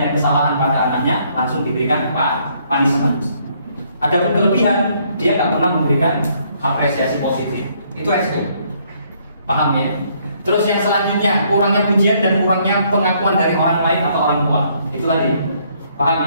kesalahan pada anaknya langsung diberikan punishment. Adapun kelebihan dia tak pernah memberikan apresiasi positif. Itu resiko. Paham ya? Terus yang selanjutnya kurangnya pujian dan kurangnya pengakuan dari orang lain atau orang tua. Itu lagi. Paham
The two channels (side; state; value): both; inverted; correlation -0.68